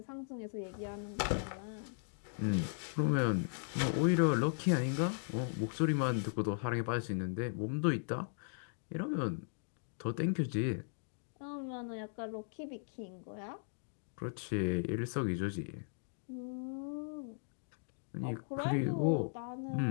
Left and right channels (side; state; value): right; silent; digital silence